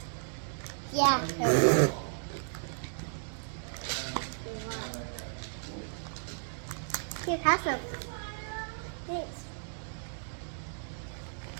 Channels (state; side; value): silent; left; digital silence